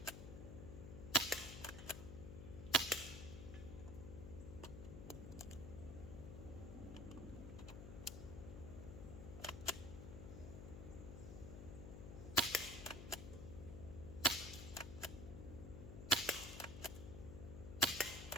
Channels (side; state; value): left; noise; hum, 8 dB below the sound